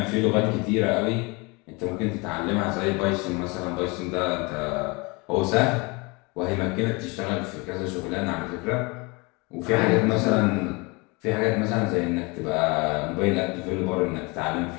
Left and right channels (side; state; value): right; quieter; 27.5 dB